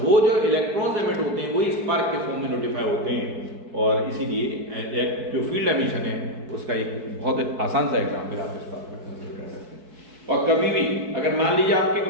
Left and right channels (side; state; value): left; late; 4.6 ms